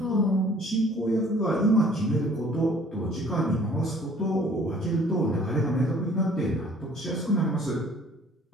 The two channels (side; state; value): both; normal; correlation 0.55